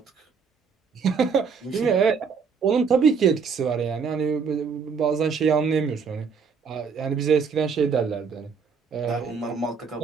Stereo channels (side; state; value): left; quieter; 5.8 dB